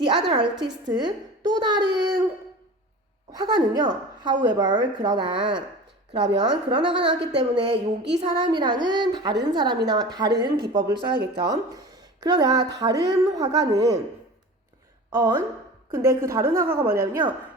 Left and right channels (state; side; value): normal; both; correlation 0.36